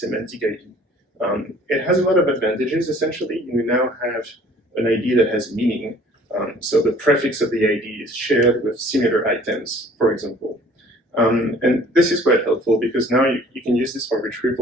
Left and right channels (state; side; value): normal; both; correlation 0.53